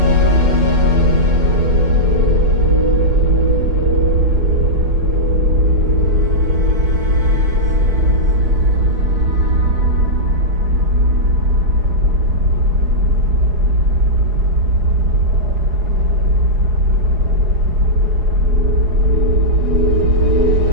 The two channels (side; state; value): left; late; 4.8 ms